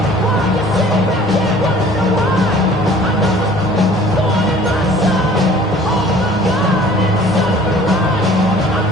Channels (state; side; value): normal; both; correlation 0.50